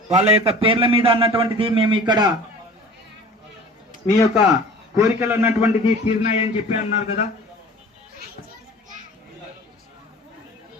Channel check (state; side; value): normal; both; correlation 0.43